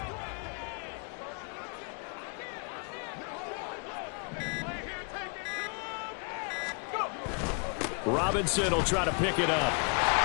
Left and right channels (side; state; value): right; quieter; 38.5 dB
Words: Robinson will try to pick it up.